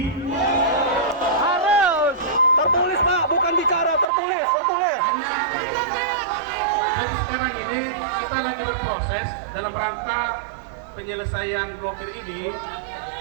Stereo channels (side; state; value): left; drops out; at 4.0 s